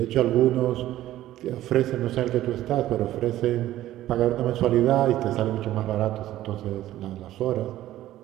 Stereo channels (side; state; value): left; quieter; 14.1 dB